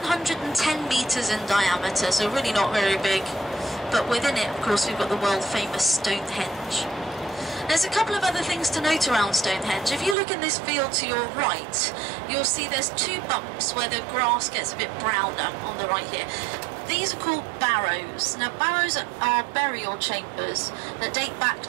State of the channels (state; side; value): drops out; left; at 10.2 s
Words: 110 metres in diameter, so really not very big. But within it, of course, we've got the world famous Stonehenge. There's a couple of other things to note around Stonehenge. If you look in this field to your right, you'll see there's two bumps where the grass gets a bit browner on the right here. These are called barrows. Now, barrows are burial chambers that date back